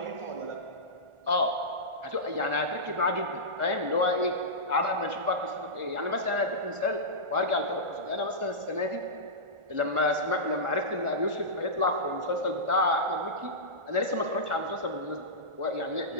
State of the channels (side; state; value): left; late; 1.4 ms